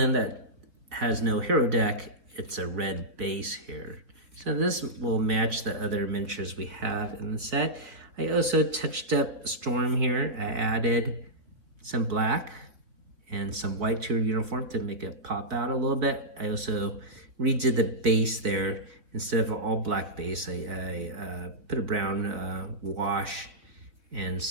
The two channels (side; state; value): left; late; 4.3 ms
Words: that has no hero deck, it's a red base here. So this will match the other miniatures we have in the set. I also touched up Storm here. I added some black and some white to her uniform to make it pop out a little bit. I also redid the base there. Instead of an all black base, I put a brown wash and